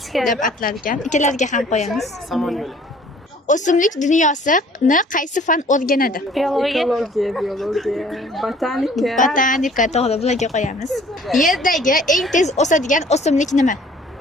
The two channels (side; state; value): both; normal; correlation 0.54